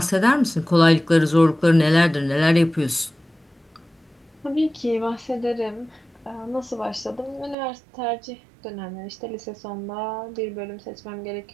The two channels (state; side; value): drops out; left; at 7.6 s